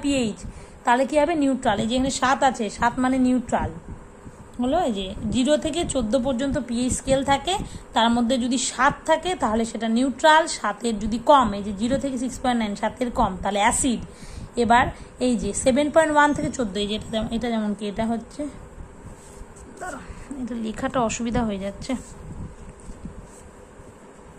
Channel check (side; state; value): both; identical; correlation 1.00